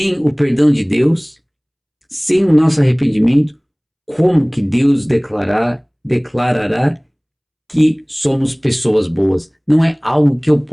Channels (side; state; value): both; identical; correlation 1.00